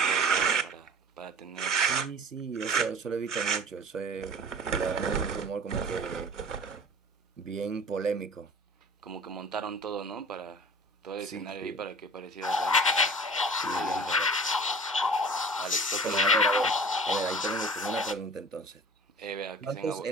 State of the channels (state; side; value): normal; both; correlation 0.42